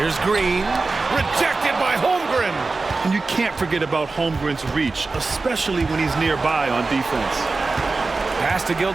Green. Rejected by Holmgren. And you can't forget about Holmgren's reach, especially when he's nearby on defense. Pass to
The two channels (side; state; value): left; quieter; 3.8 dB